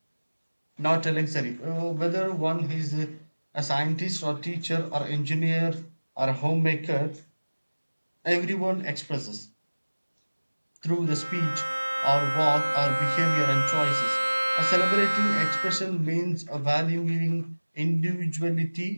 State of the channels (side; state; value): both; inverted; correlation -1.00